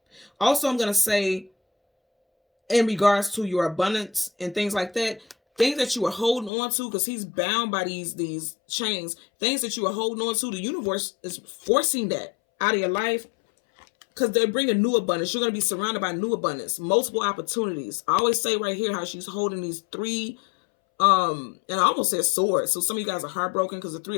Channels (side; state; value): right; drops out; at 6.5 s